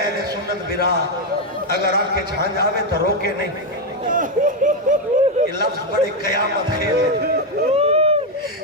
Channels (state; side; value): normal; both; correlation 0.04